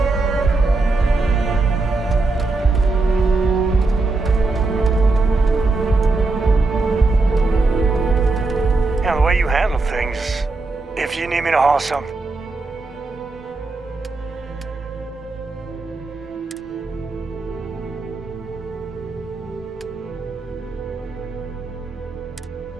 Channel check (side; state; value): left; quieter; 3.5 dB